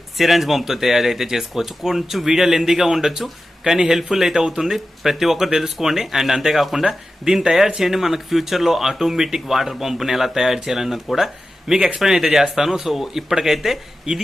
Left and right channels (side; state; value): both; normal; correlation 0.93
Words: సిరంజ్ పంప్తో తయారైతే చేసుకోవచ్చు. కొంచెం వీడియో లెందీగా ఉండొచ్చు కానీ హెల్ప్ఫుల్ అయితే అవుతుంది. ప్రతి ఒక్కరు తెలుసుకోండి. అండ్ అంతేకాకుండా దీన్ని తయారు చేయండి మనకు ఫ్యూచర్లో ఆటోమేటిక్ వాటర్ పంప్ని ఎలా తయారు చేయాలన్నది కూడా మీకు ఎక్స్ప్లెయిన్ అయితే చేస్తాను. సో ఇప్పటికైతే